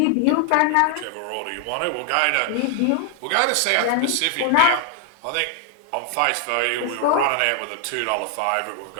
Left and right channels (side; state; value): both; different; correlation 0.00